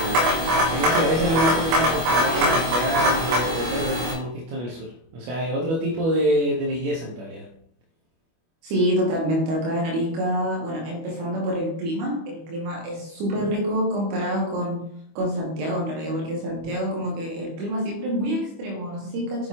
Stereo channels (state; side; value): late; left; 25 ms